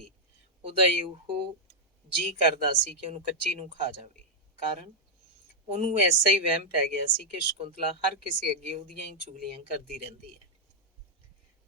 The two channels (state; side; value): normal; both; correlation -0.02